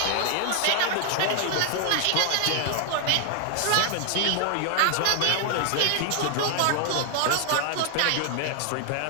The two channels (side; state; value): both; different; correlation 0.00